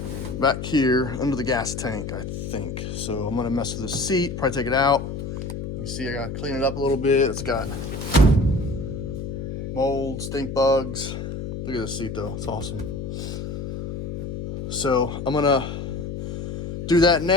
back here under the gas tank, I think. So I'm gonna mess with this seat, probably take it out. You can see I gotta clean it up a little bit. It's got mold, stink bugs. Look at this seat though, it's awesome. So I'm gonna do that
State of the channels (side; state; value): left; noise; hum, 6 dB below the sound